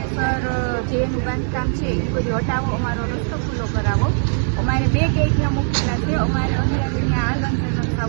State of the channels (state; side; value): silent; left; 56 dB below the other